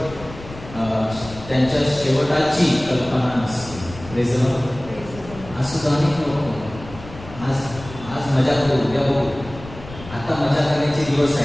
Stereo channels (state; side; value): noise; left; rumble, 15 dB below the sound